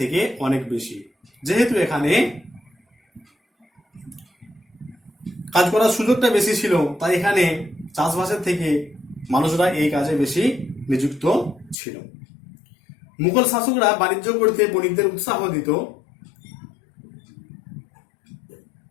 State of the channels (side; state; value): right; drops out; at 11.8 s